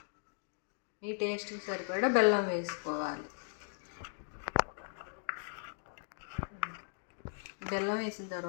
మీ టేస్ట్కి సరిపడా బెల్లం వేసుకోవాలి. బెల్లం వేసిన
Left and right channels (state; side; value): silent; right; digital silence